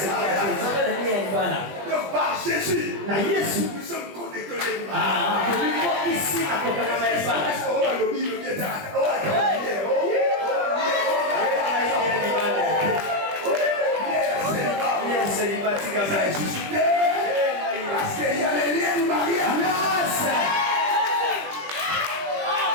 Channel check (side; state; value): left; late; 20 ms